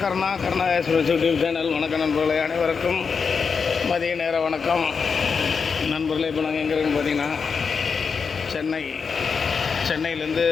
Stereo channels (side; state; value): right; quieter; 5.6 dB